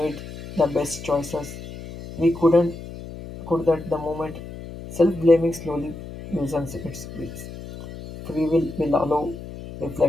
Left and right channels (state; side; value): noise; left; hum, 12 dB below the sound